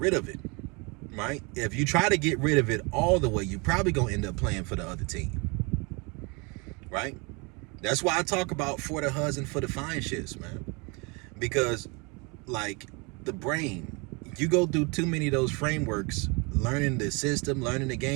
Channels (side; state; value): left; quieter; 29.9 dB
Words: of it, right? If you try to get rid of it all the way, you're probably going to end up playing for the other team, right? That's why I talk about for the husband, for the fine shits, man. Because, like, the brain, you go through too many of those frameworks, learning the system, learning the